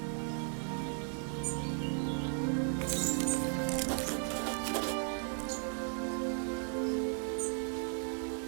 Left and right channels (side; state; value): left; silent; 54 dB below the other